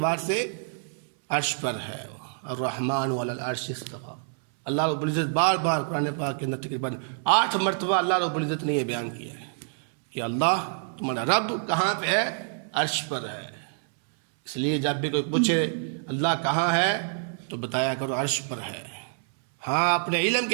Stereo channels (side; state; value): left; silent; 60 dB below the other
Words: سے عرش پر ہے۔ الرحمن علی العرش استوى، اللہ رب العزت بار بار قرآن پاک کے اندر تقریباً 8 مرتبہ اللہ رب العزت نے یہ بیان کیا ہے کہ اللہ تمہارا رب کہاں پہ ہے؟ عرش پر ہے۔ اس لیے جب بھی کوئی پوچھے اللہ کہاں ہے تو بتایا کرو عرش پر ہے۔ ہاں اپنے علم